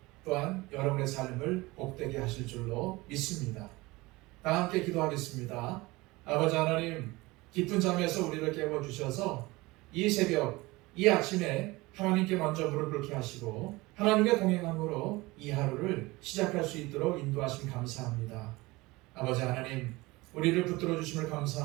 또한 여러분의 삶을 복되게 하실 줄로 믿습니다. 다 함께 기도하겠습니다. 아버지 하나님, 깊은 잠에서 우리를 깨워주셔서 이 새벽, 이 아침에 하나님께 먼저 무릎 꿇게 하시고 하나님의 동행함으로 이 하루를 시작할 수 있도록 인도하심 감사합니다. 아버지 하나님, 우리를 붙들어 주심을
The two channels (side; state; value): left; quieter; 21.7 dB